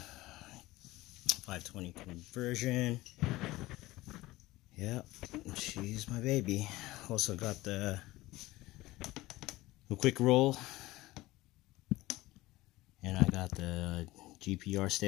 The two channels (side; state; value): right; quieter; 18.5 dB